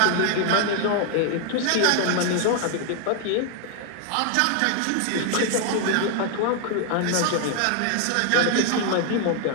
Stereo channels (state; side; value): different; both; correlation 0.00